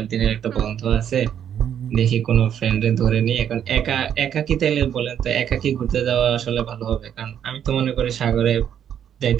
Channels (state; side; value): quieter; left; 9.3 dB